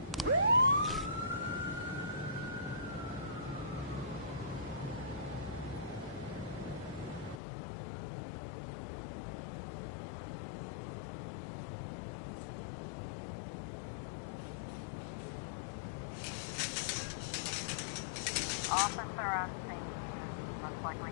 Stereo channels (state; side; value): drops out; right; at 7.4 s